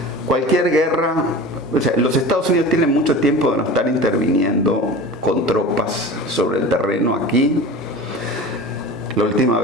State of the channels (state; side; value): normal; both; correlation 0.35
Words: cualquier guerra, o sea, los Estados Unidos tienen mucho tiempo de no estar interviniendo con tropas sobre el terreno aquí. La última